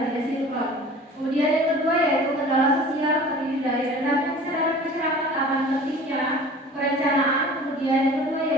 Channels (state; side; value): normal; both; correlation 0.43